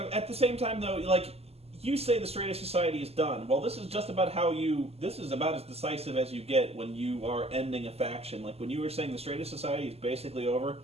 At the same time, though, you say the Straight Edge Society is done. Well, this is just about this is about as decisive as you get when you are ending a faction. Like, when you were saying the Straight Edge Society is basically over,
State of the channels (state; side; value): late; left; 0.29 ms